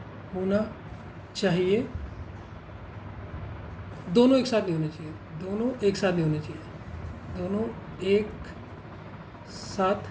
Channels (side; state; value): both; identical; correlation 1.00